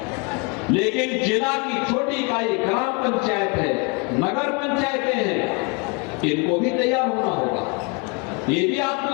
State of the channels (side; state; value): right; quieter; 30.7 dB